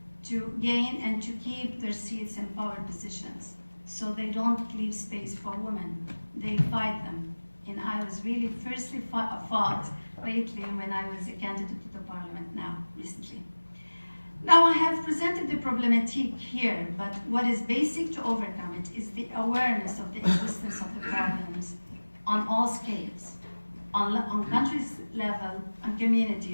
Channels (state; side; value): inverted; both; correlation -1.00